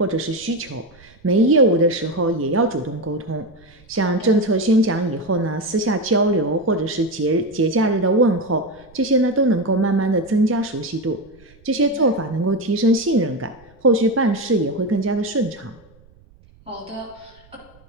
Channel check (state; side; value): noise; right; rumble, 28 dB below the sound